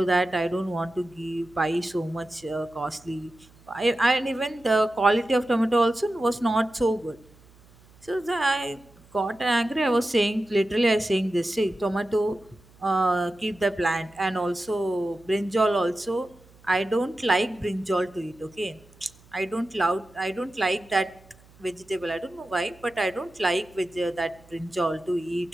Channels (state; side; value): noise; right; hum, 27 dB below the sound